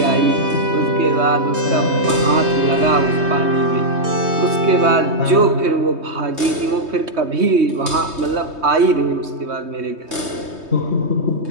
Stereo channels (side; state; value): left; late; 3.2 ms